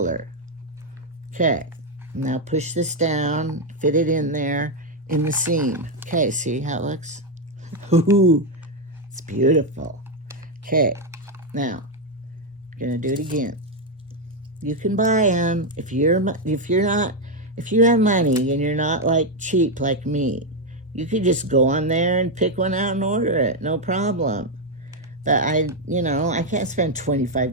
Okay, now push this down, fit it in there in the seam. Okay, see how it looks? Ooh, it's beautiful. Okay, now I'm gonna do it again. You can buy them if you have money and you're not like cheap like me. You could just go on there and pick one out and order it, no problem. But I can't spend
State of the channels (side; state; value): both; normal; correlation 0.03